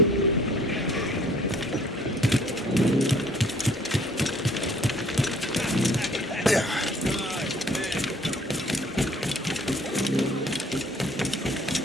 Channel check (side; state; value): both; normal; correlation 0.57